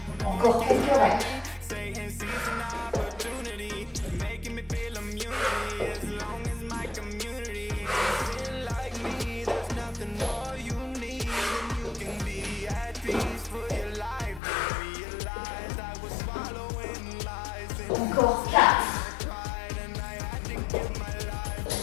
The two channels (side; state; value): right; drops out; at 14.4 s